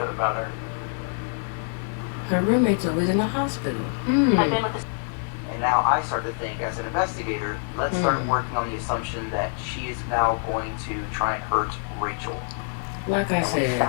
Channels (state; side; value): silent; right; 61 dB below the other